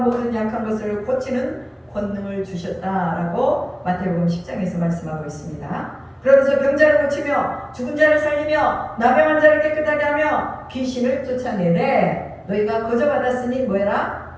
약한 것을 고치는 권능을 주셨다라고 마태복음 10장에서 말씀하고 있습니다. 그러면서 병자를 고치며 죽은 자를 살리며 나병한 자를 깨끗하게 하며 귀신을 쫓아내래 너희가 거저 받았으니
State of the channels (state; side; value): identical; both; correlation 1.00